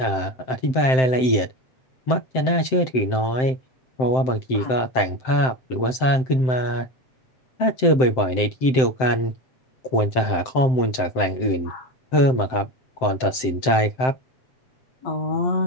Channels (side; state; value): right; late; 7.7 ms